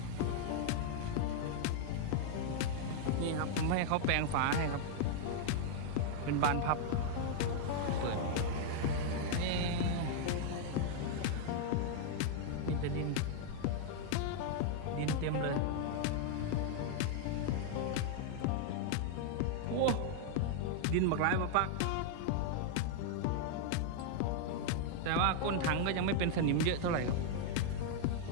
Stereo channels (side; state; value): both; different; correlation 0.00